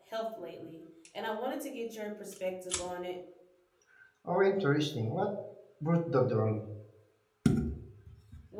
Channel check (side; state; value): both; identical; correlation 1.00